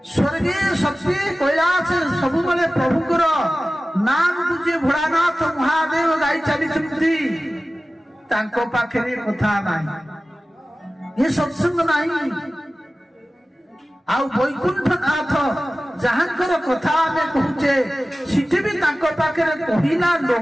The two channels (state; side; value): normal; both; correlation 0.96